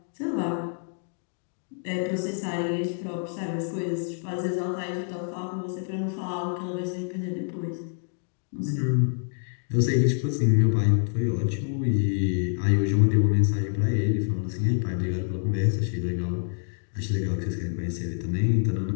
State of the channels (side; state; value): right; silent; 56 dB below the other